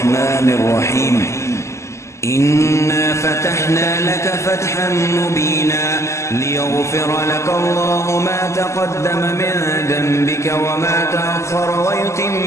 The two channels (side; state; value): right; late; 0.13 ms